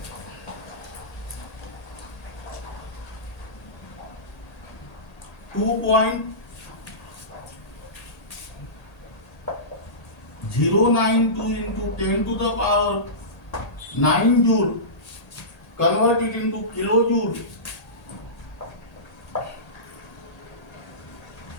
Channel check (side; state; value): right; late; 1.8 ms